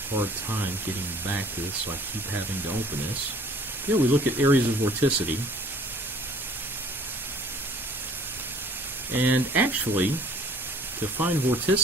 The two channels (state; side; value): normal; both; correlation 0.54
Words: hard time getting back to this, so I keep having to open this. Here we look at areas of vorticity. And actually, to find